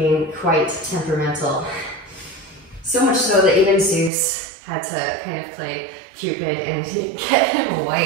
quite temperamental. So much so that even Zeus had to kind of play Cupid and get him a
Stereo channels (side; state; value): left; drops out; at 4.1 s